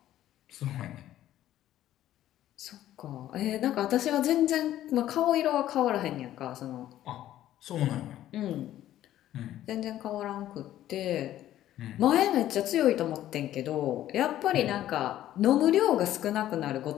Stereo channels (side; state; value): right; quieter; 12.9 dB